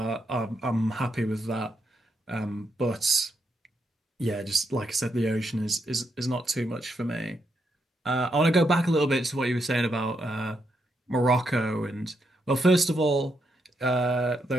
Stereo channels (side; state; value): both; normal; correlation 0.80